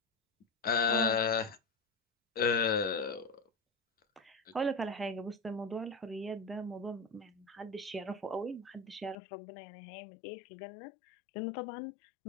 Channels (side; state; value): right; drops out; at 9.2 s